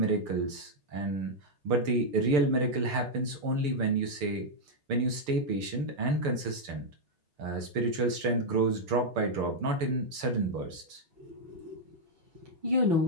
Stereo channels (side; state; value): left; late; 6.7 ms